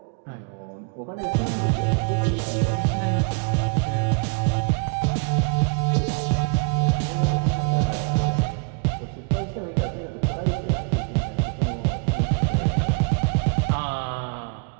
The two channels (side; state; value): left; quieter; 34.8 dB